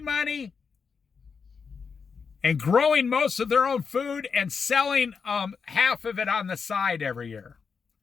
money, and growing most of their own food and selling half of it on the side every year.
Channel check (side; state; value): right; quieter; 5.6 dB